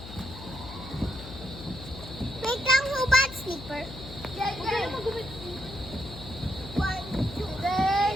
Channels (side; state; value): left; noise; hum, 13 dB below the sound